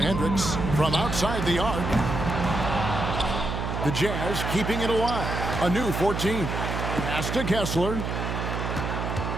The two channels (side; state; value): right; noise; hum, 3 dB below the sound